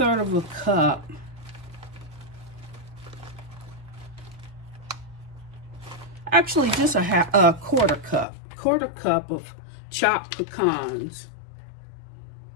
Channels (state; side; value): drops out; right; at 8.2 s